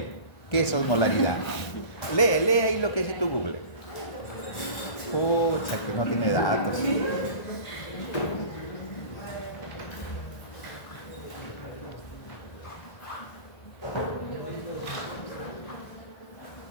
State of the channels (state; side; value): late; right; 1.5 ms